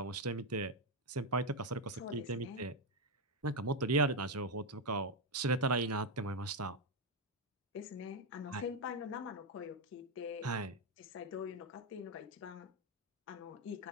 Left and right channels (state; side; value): normal; both; correlation 0.04